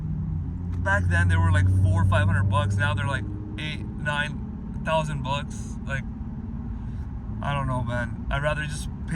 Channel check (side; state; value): both; identical; correlation 1.00